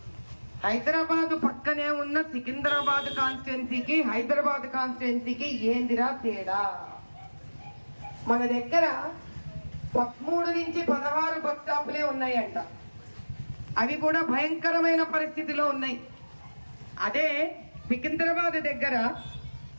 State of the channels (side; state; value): both; inverted; correlation -1.00